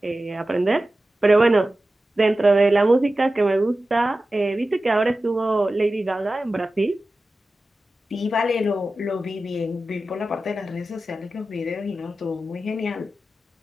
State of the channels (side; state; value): both; normal; correlation 0.94